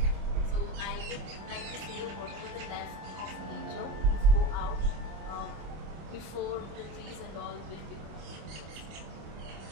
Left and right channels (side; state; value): left; late; 26 ms